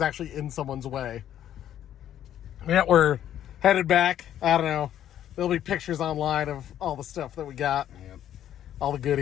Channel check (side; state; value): right; quieter; 11.0 dB